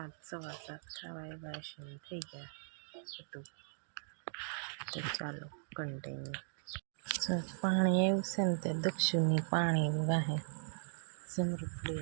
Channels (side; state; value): left; silent; digital silence